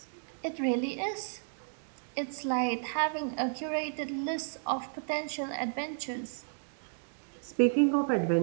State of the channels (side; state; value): left; silent; digital silence